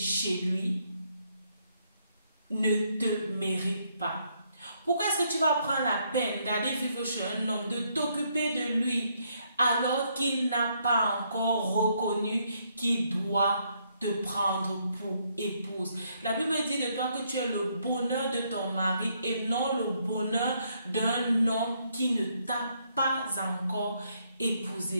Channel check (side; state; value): both; inverted; correlation -0.73